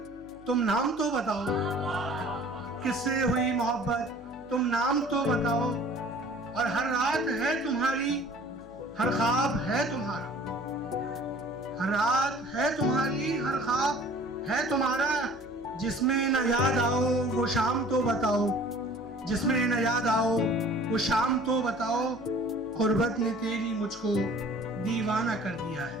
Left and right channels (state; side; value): noise; left; hum, 23 dB below the sound